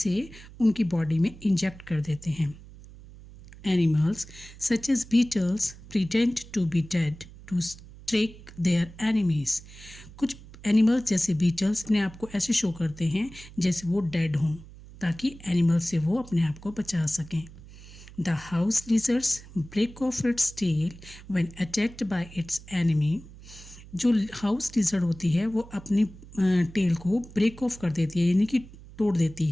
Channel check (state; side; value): noise; right; hum, 18 dB below the sound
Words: उनकी बॉडी में इंजेक्ट कर देते हैं. Animals such as beetles pretend to be dead to trick their enemies. कुछ एनिमल्स जैसे बीटल्स अपने आप को ऐसे शो करते हैं जैसे वो डेड हों ताकि एनिमल्स से वो अपने आप को बचा सकें. The house lizards break off its tail when attacked by its enemy. जो हाउस लिजर्ड होती है वो अपनी टेल को ब्रेक ऑफ कर देती है, यानी कि तोड़ देती